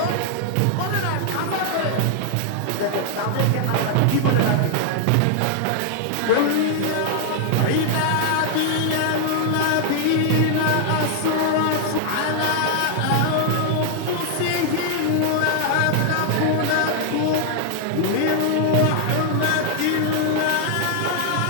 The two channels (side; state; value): both; different; correlation 0.00